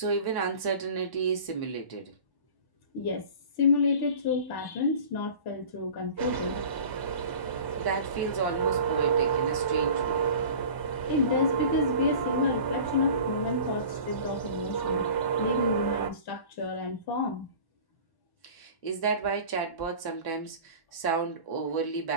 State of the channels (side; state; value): right; late; 1.0 ms